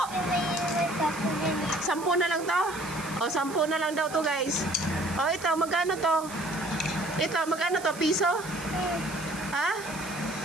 10? May sapo din. 10 na lang to? O, 10 na lang daw to, guys. O, ito, magkano to? Ito, magkano to? Piso? Ha?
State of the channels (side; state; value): right; noise; hiss, 15 dB below the sound